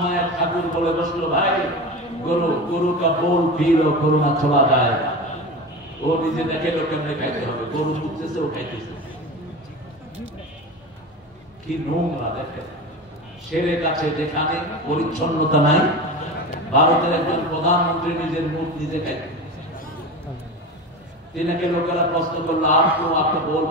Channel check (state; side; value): normal; both; correlation 0.28